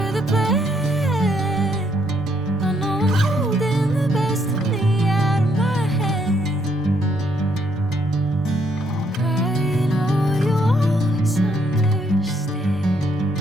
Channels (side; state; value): both; normal; correlation 0.71